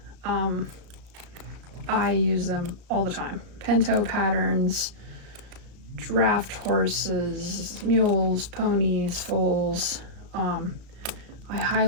I use them all the time. Pinto patterns, draft horses, mules, ponies, foals. I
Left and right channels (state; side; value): late; left; 34 ms